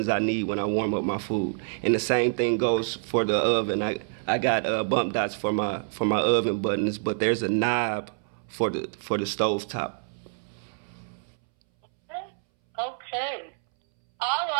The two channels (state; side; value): silent; left; 60 dB below the other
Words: I need when I warm up my food. And the same thing goes for the oven. I got bump dots for my oven buttons, but there's a knob for the stove top. Okay. All